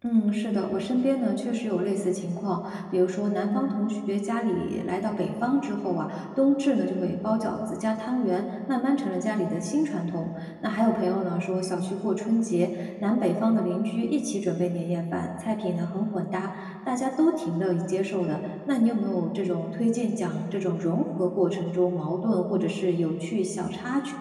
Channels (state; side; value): identical; both; correlation 1.00